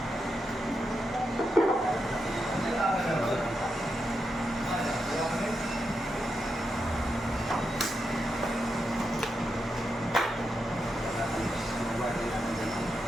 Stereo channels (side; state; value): both; normal; correlation 0.85